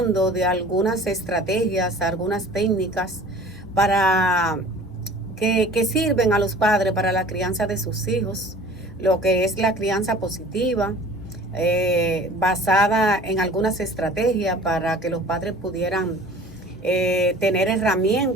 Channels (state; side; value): normal; both; correlation 0.45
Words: de algunas estrategias, algunas técnicas para que sirven a los padres para la crianza de sus hijos, lo que es la crianza positiva, basada en algunas estrategias para que los padres pudieran tener